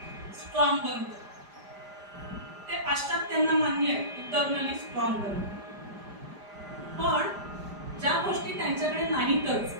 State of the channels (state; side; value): late; left; 5.0 ms